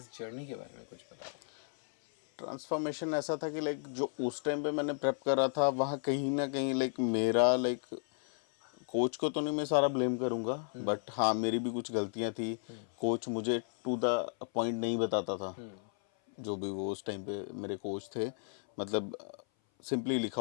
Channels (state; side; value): silent; right; 55 dB below the other